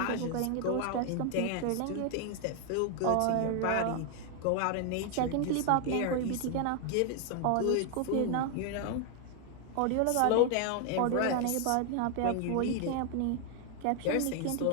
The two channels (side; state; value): both; different; correlation 0.00